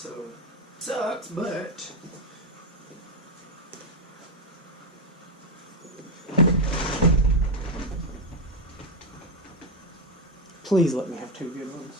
it sucks, but please let me have 2 good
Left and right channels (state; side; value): normal; both; correlation 0.08